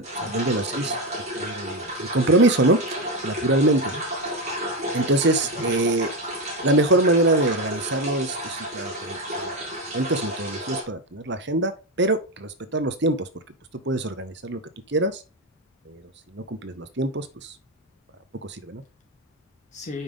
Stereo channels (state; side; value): normal; both; correlation 0.11